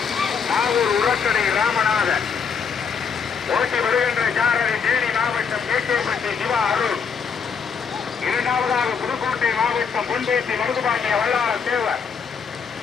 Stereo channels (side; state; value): right; quieter; 6.3 dB